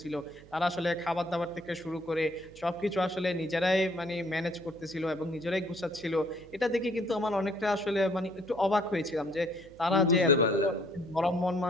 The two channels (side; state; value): right; noise; hum, 22 dB below the sound